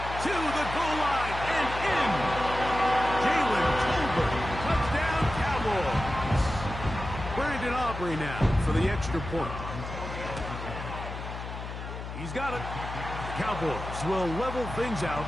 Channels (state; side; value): noise; left; hum, 8 dB below the sound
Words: To the goal line and in. Jalen Tolbert. Touchdown, Cowboys. Brandon Aubrey now for the extra point. He's got it. The Cowboys will level things out